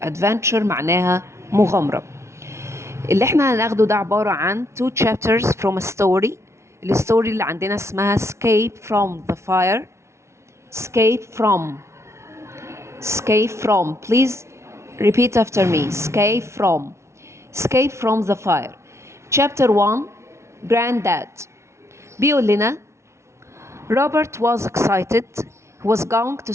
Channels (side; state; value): left; late; 0.13 ms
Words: Adventure معناها مغامرة. اللي احنا هناخده ده عبارة عن two chapters from a story. الستوري اللي عندنا اسمها Escape from the Fire. Escape from. Escape from. Please repeat after me. Escape from. Escape from the fire. Chapter 1. Granddad. بيقول لنا Robert was excited. He was going to